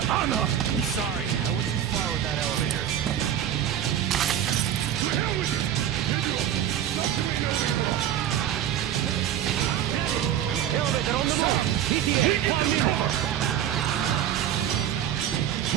Anna! I'm sorry, I went too far with that elevator. To hell with it! Elevator on the left!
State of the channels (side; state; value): left; quieter; 10.5 dB